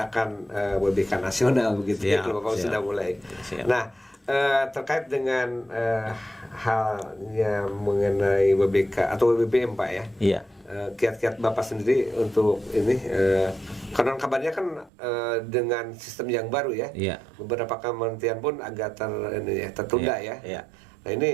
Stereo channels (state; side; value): drops out; left; at 14.9 s